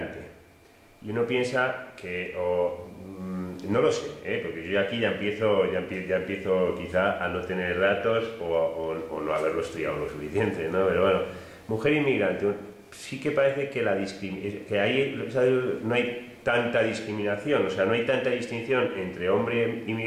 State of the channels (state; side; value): identical; both; correlation 1.00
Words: y uno piensa que, no lo sé, porque yo aquí ya empiezo quizá a no tener datos o no haberlo estudiado lo suficiente, ¿no? Pero bueno, mujer inmigrante, sí que parece que no hay tanta discriminación, o sea, no hay tanta distinción entre hombre